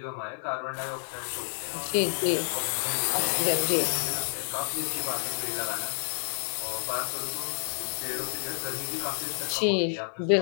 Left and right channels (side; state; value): right; silent; 58 dB below the other